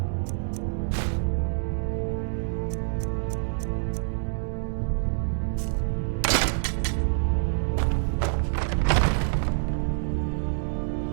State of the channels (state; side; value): silent; left; digital silence